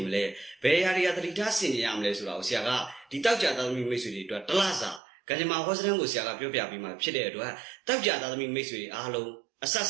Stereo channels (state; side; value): drops out; left; at 5.0 s